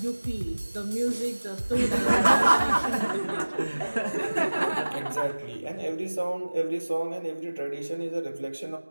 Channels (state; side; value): inverted; both; correlation -1.00